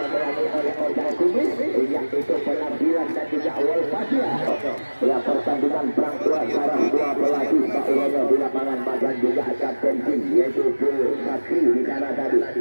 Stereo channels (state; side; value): inverted; both; correlation -1.00